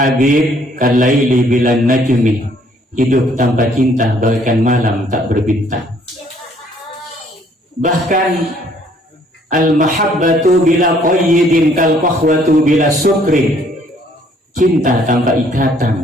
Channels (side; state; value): both; normal; correlation 0.62